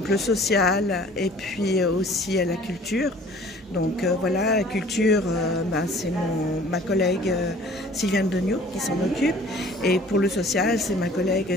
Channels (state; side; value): normal; both; correlation 0.50